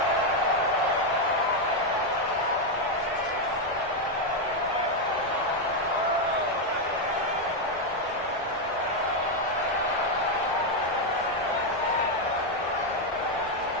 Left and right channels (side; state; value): both; normal; correlation 0.03